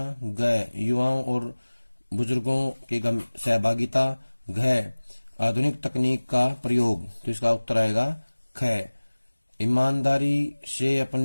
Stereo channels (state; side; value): inverted; both; correlation -1.00